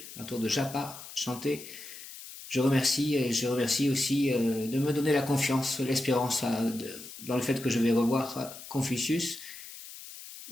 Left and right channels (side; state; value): left; noise; hiss, 14 dB below the sound